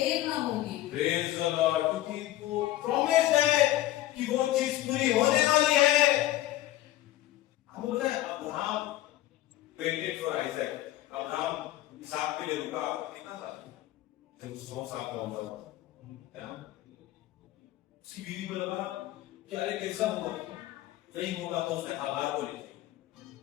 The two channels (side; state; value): right; quieter; 14.9 dB